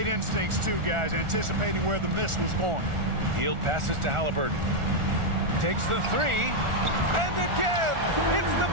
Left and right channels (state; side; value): late; left; 1.4 ms